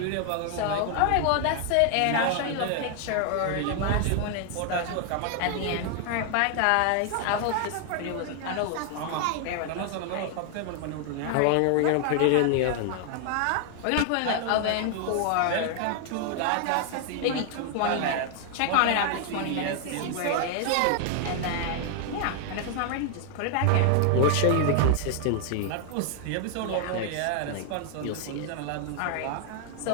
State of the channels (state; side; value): different; both; correlation 0.00